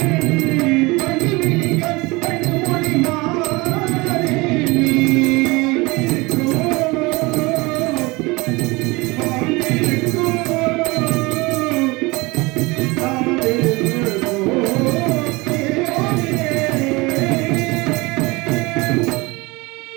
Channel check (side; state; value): left; quieter; 23.9 dB